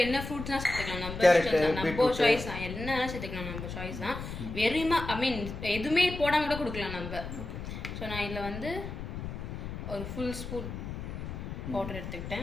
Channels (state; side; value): noise; left; rumble, 7 dB below the sound